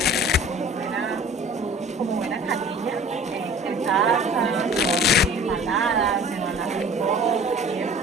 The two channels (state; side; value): normal; both; correlation 0.45